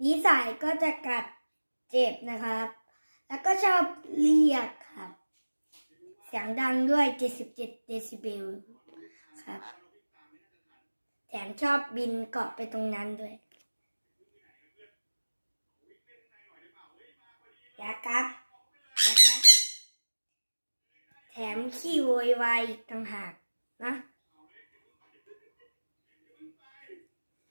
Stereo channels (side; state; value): both; inverted; correlation -1.00